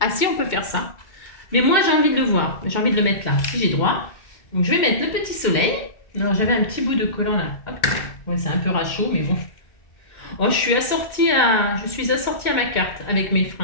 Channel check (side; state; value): right; late; 2.1 ms